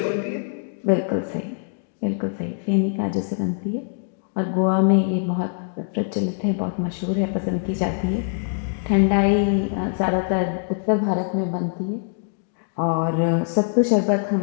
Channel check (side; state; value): right; silent; digital silence